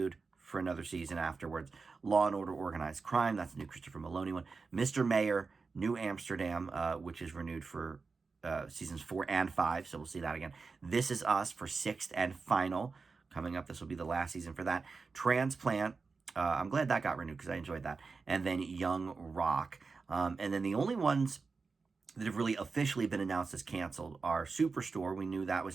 for another season afterwards. Law & Order Organized Crime, that's the new Christopher Maloney one. Mr. Mayor, New Amsterdam, which is renewed for seasons 4 and 5, so we'll see that again. This Is Us for 6th and final. Coming up, this will be the last season for that. Transplant, I'm glad that got renewed because I enjoyed that. And then Young Rock. And then the only ones that have really officially been announced as canceled are Superstore, we knew that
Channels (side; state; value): left; quieter; 4.5 dB